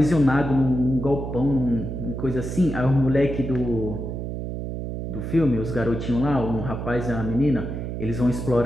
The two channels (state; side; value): noise; right; hum, 5 dB below the sound